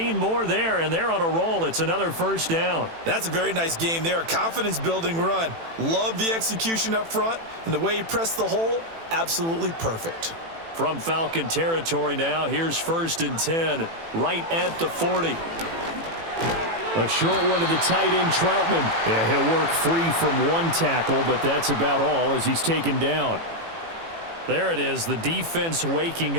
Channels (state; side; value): late; left; 18 ms